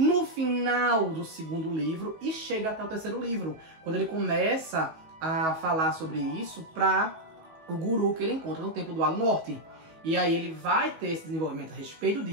final do segundo livro e chega até o terceiro livro, quando ele começa a falar sobre isso para o guru que ele encontra no Templo do Lago Norte. E aí ele vai ter esse desenvolvimento a respeito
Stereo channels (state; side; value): late; left; 19 ms